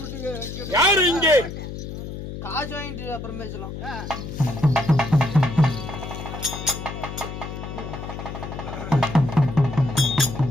யாரு இங்கே? காசு வாங்கிட்டு அப்புறம் பேசலாம்.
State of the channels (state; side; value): noise; left; hum, 8 dB below the sound